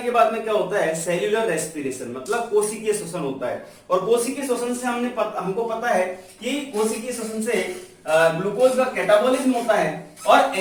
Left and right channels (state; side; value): identical; both; correlation 1.00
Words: के बाद में क्या होता है? सेल्यूलर रेस्पिरेशन, मतलब कोशिकीय श्वसन होता है। और कोशिकीय श्वसन से हमको पता है कि कोशिकीय श्वसन से ग्लूकोज का कैटाबॉलिज्म होता है और